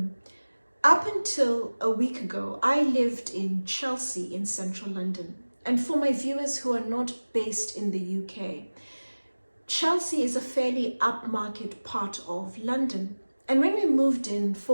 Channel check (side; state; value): both; inverted; correlation -1.00